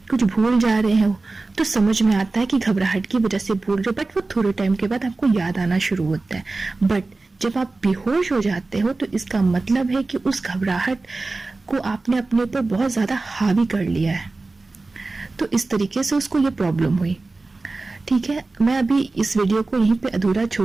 कुछ भूल जा रहे हो, तो समझ में आता है कि घबराहट की वजह से भूल रहे हो, बट वो थोड़े टाइम के बाद आपको याद आना शुरू होता है। बट जब आप बेहोश हो जाते हो तो इसका मतलब है कि उस घबराहट को आपने अपने ऊपर बहुत ज्यादा हावी कर लिया है। तो इस तरीके से उसको ये प्रॉब्लम हुई। ठीक है, मैं अभी इस वीडियो को यहीं पे अधूरा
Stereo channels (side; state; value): left; quieter; 3.4 dB